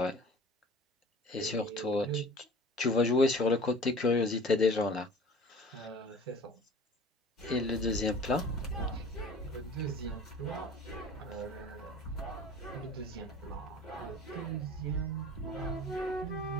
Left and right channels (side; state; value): both; normal; correlation 0.44